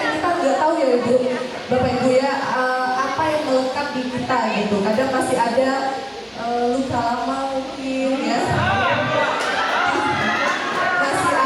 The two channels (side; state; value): both; identical; correlation 1.00